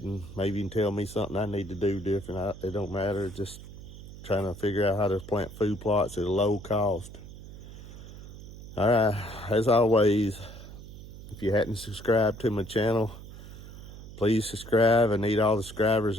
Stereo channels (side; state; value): right; noise; hum, 14 dB below the sound